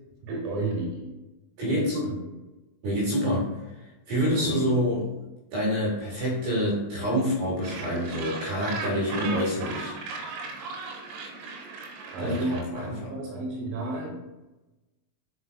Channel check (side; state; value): left; late; 20 ms